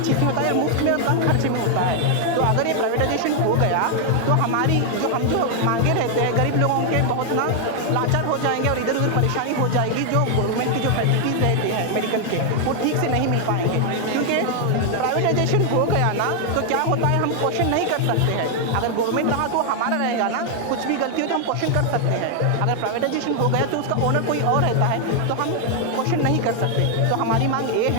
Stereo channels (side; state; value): both; different; correlation 0.00